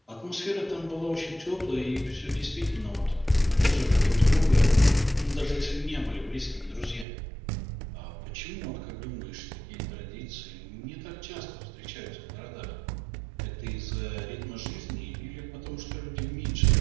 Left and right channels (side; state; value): left; drops out; at 7.1 s